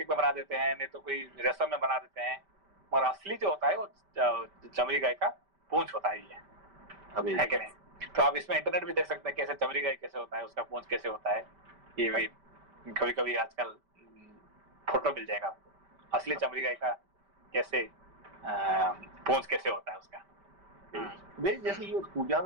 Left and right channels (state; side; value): late; left; 5.1 ms